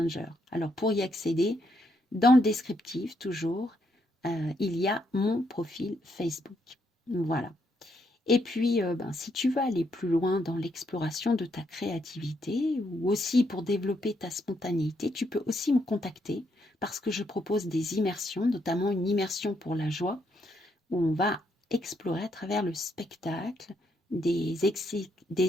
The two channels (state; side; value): normal; both; correlation 0.76